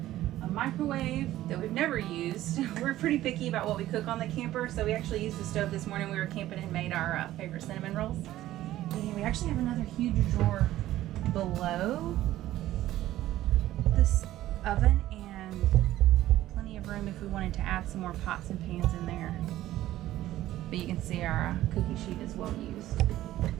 A microwave that we've never used. We're pretty picky about what we cook on the camper, so we actually used the stove this morning. We were camping and made our favorite cinnamon rolls. And we actually have another huge drawer below this oven, and plenty of room if we wanted to add some more pots and pans in there. But you can see our cookie sheet is well used.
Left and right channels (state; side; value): quieter; left; 14.5 dB